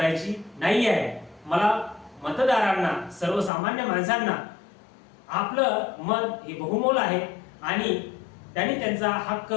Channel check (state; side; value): drops out; right; at 3.5 s